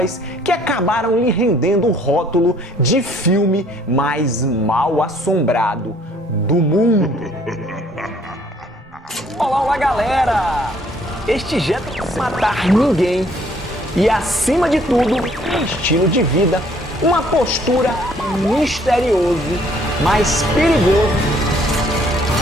que acabaram lhe rendendo o rótulo de filme mais mal assombrado do mundo. Olá galera! Este jet não vai matar ninguém e, acima de tudo, um estilo de vida, uma postura misterioso, mas perigoso.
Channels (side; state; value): both; normal; correlation 0.61